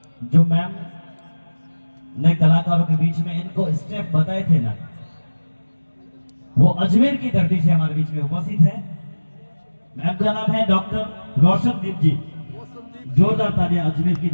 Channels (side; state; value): both; inverted; correlation -1.00